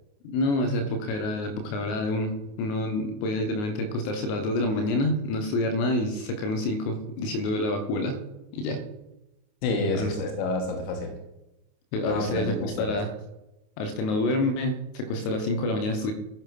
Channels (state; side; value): late; right; 28 ms